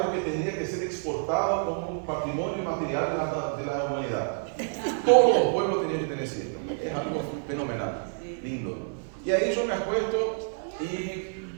que tendría que ser exportado como un patrimonio material de la humanidad. Todos los pueblos tenían que tener siesta. Es algo fenomenal, lindo. Y ahí yo me acuesto y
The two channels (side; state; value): left; silent; 59 dB below the other